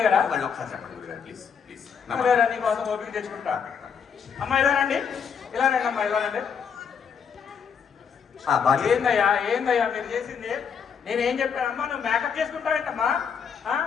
అయ్యారా? మళ్ళీ ఒకసారి చెప్పండి గురుగారు ప్లీజ్ ప్లీజ్. సరేరా, నీ కోసం ఓపిక తెచ్చుకుంటా. అమ్మా ఇలా రండి, ఇలా రండి అమ్మా, ఇలా రండి. ఏందయ్యా మీరు చేసింది? నేను ఏం చెప్పానమ్మా, నువ్వు మేకప్ చేసుకుంటావేంటమ్మా?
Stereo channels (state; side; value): quieter; right; 6.8 dB